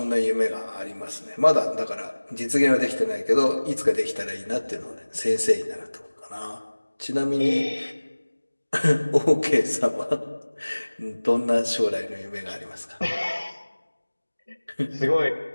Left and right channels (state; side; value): inverted; both; correlation -1.00